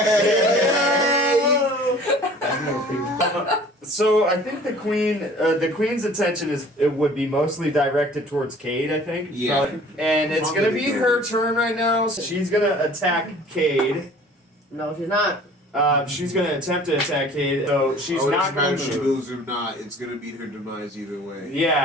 So I think the queen's attention would be mostly directed towards Cade. I think. Yeah. And it's gonna be her turn right now. So she's gonna attack Cade. No, she's not. She's gonna attempt to attack Cade, so she's it not doesn't matter gonna if she move. moves or not. It's gonna meet her demise either way.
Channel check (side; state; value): both; normal; correlation 0.49